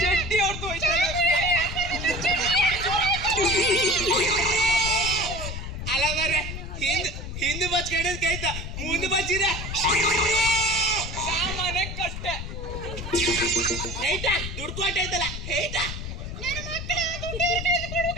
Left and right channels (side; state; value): left; noise; rumble, 7 dB below the sound